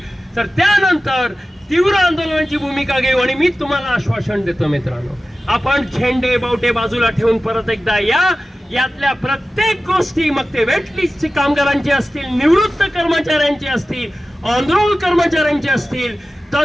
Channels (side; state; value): both; normal; correlation 0.95